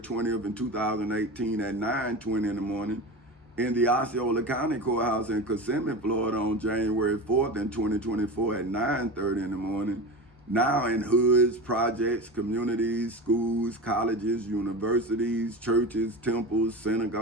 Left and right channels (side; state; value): both; normal; correlation 0.27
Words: in 2018 at 9:20 in the morning, in the Osceola County Courthouse in Kissimmee, Florida on January 4th in 2024 at 9:30 in the morning, now in hoods, projects, communities, schools, colleges, universities, churches, temples,